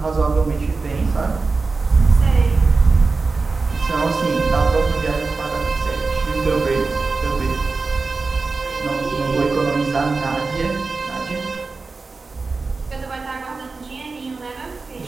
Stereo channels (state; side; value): quieter; left; 4.0 dB